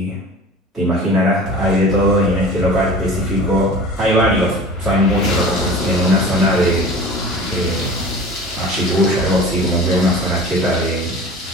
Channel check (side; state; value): both; normal; correlation 0.39